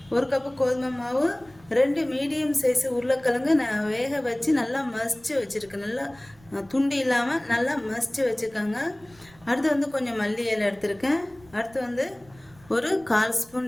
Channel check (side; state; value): right; noise; rumble, 26 dB below the sound